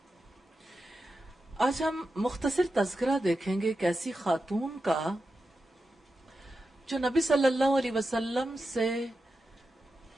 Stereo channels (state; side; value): normal; both; correlation 0.90